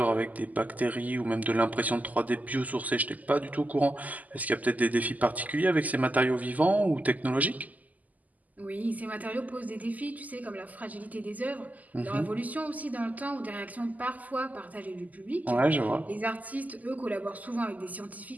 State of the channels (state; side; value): late; left; 0.078 ms